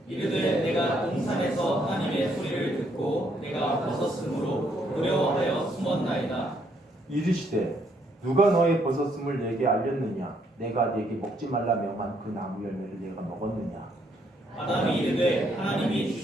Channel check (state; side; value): normal; both; correlation 0.71